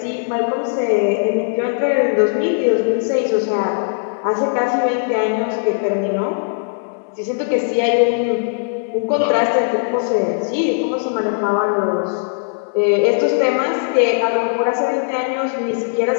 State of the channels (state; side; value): silent; right; 65 dB below the other